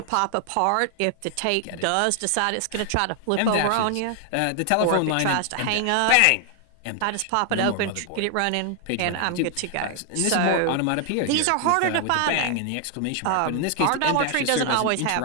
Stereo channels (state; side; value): different; both; correlation 0.00